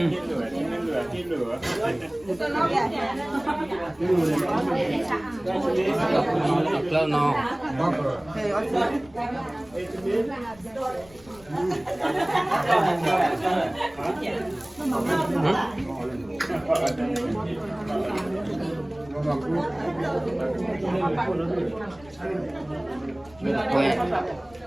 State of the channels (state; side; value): noise; left; rumble, 24 dB below the sound